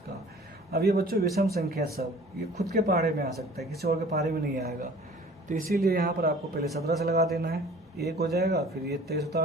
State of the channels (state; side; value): normal; both; correlation 0.49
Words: अब ये बच्चों विषम संख्या सब ये खुद के पहाड़े में आ सकता है, किसी और के पहाड़े में नहीं आएगा। तो इसीलिए यहाँ पर आपको पहले 17 से लगा देना है, 1 हो जाएगा। फिर ये 23